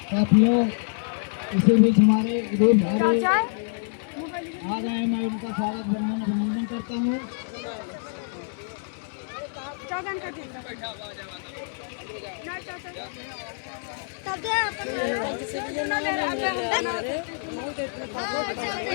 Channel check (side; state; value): right; silent; digital silence